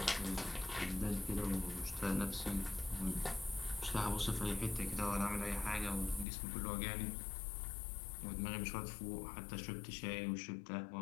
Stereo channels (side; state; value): right; drops out; at 6.2 s